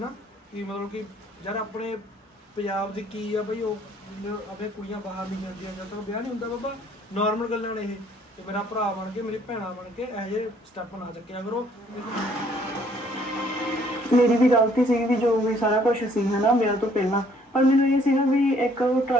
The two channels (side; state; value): both; normal; correlation 0.62